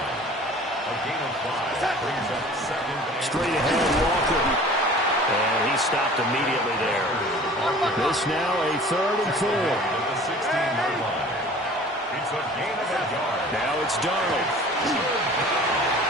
gain of 5 brings up second. Straight ahead, Walker. And he stopped immediately there. This now a third and 4. At the 16-yard line. It's a gain of a yard. Now it's Darnold.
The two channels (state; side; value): normal; both; correlation 0.45